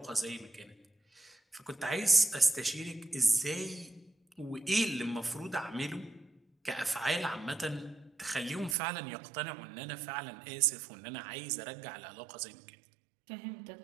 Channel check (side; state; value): left; drops out; at 8.8 s